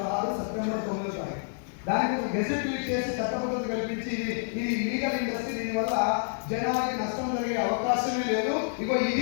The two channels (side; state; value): right; silent; digital silence